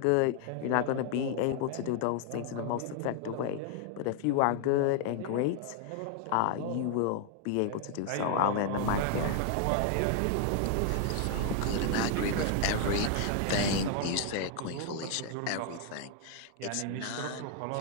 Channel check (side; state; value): both; different; correlation 0.00